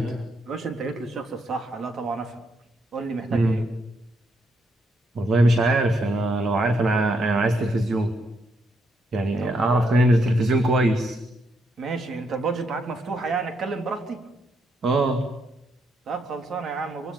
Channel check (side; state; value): both; normal; correlation 0.77